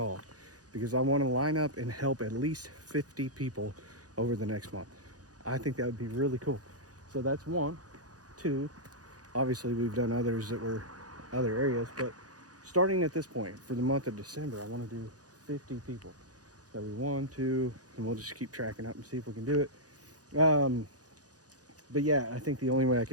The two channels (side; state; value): left; late; 0.68 ms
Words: because I want to line up and help at least 50 people over the next month. I think that would be really cool. So that's one. Two, obviously we've done others that were other areas, but starting at this point for the month of December, I want to do 50 people. So we 1, 2, and we'll just keep tracking up and see if we can do it. But yeah, I think the only way I